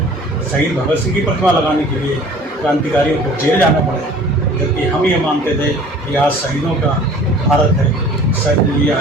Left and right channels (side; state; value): both; normal; correlation 0.48